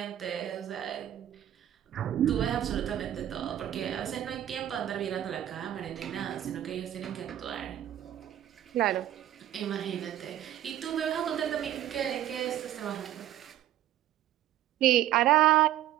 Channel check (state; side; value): quieter; left; 12.2 dB